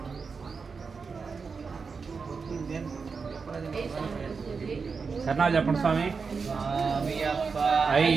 శరణాలు చెప్పండి స్వామి స్వామియప్ప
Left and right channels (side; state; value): left; quieter; 5.1 dB